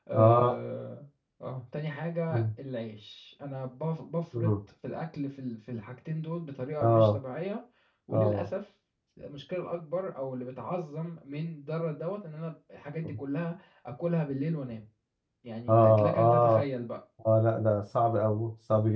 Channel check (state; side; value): identical; both; correlation 1.00